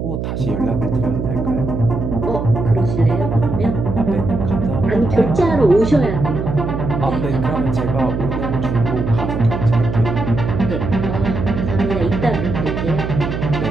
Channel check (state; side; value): noise; right; hum, 4 dB below the sound